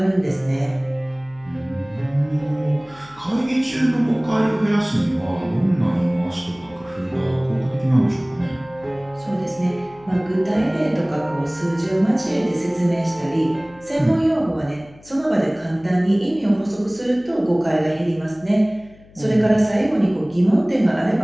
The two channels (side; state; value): left; noise; hum, 25 dB below the sound